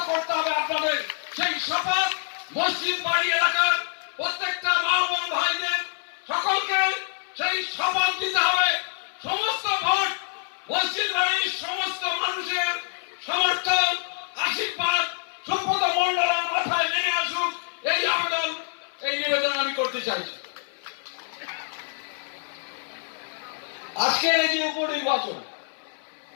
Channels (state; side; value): silent; right; 61 dB below the other